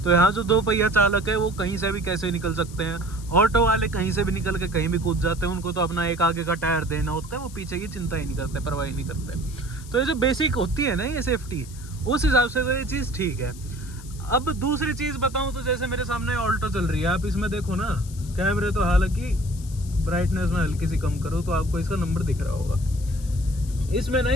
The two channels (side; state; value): left; noise; hiss, 19 dB below the sound